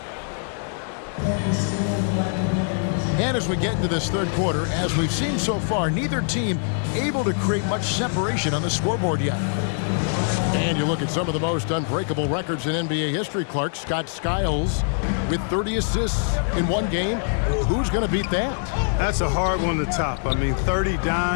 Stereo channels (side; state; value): right; silent; digital silence